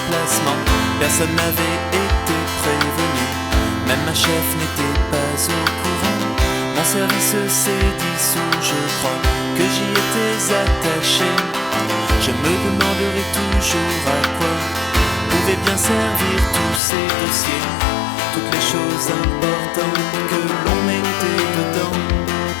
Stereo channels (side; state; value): right; drops out; at 16.8 s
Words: personne n'avait été prévenu, même ma chef n'était pas au courant. Mon service s'est dissous, je crois que j'y étais attaché. Je me demanderai toujours à quoi pouvaient bien servir tous ces dossiers, toutes les choses importantes que l'on mettait dedans,